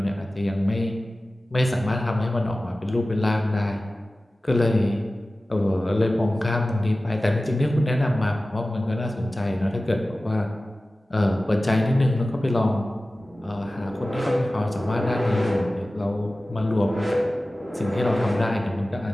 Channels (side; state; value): both; normal; correlation 0.96